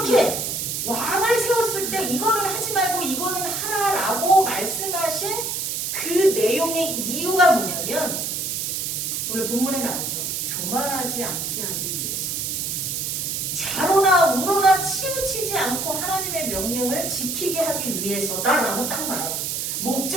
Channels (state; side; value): noise; right; hiss, 2 dB below the sound